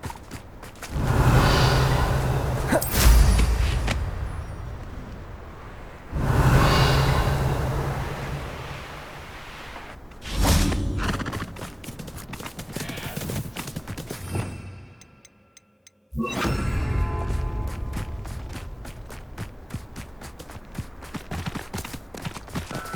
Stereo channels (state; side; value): identical; both; correlation 1.00